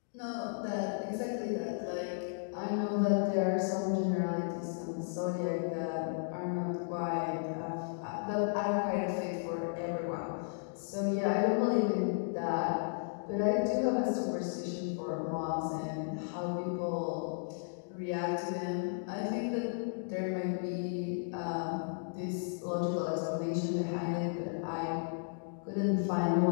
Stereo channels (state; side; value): silent; right; digital silence